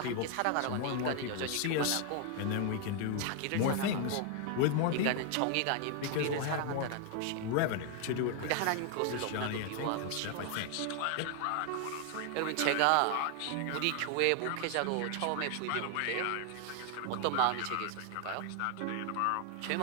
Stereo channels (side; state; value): both; different; correlation 0.00